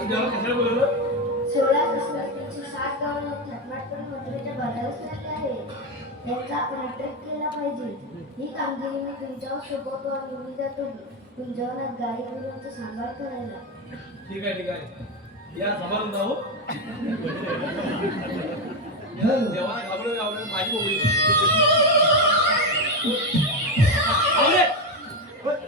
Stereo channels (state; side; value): normal; both; correlation 0.11